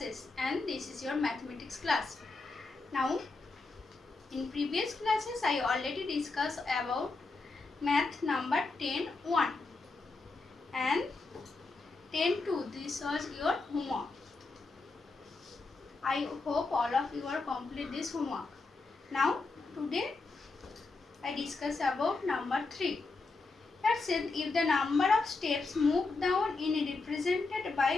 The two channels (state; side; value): quieter; right; 3.8 dB